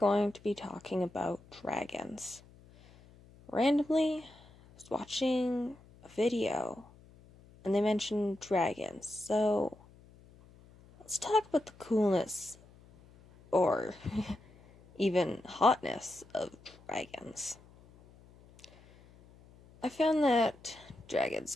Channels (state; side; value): noise; left; hum, 25 dB below the sound